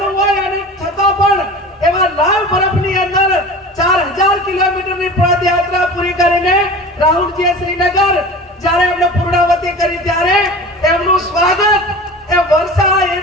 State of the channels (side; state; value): both; normal; correlation 0.36